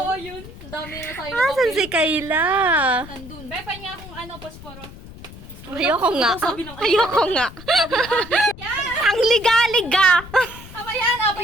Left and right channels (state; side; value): noise; left; rumble, 16 dB below the sound